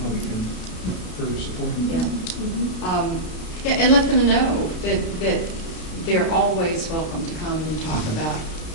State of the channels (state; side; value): late; right; 33 ms